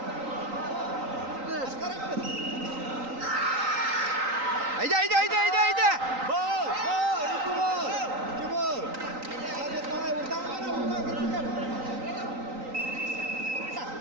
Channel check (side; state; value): left; late; 3.9 ms